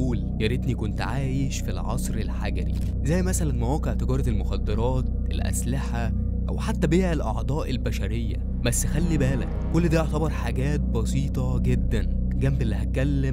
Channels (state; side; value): identical; both; correlation 1.00